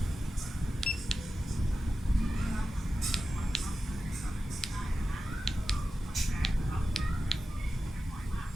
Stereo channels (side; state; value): both; normal; correlation 0.93